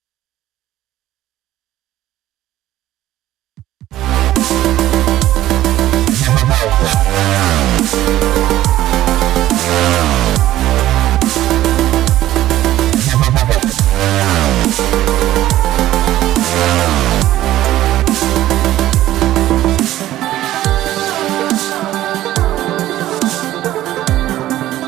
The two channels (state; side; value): quieter; left; 14.2 dB